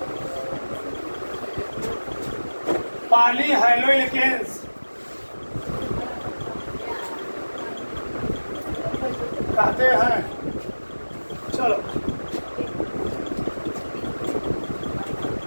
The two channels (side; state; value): both; inverted; correlation -1.00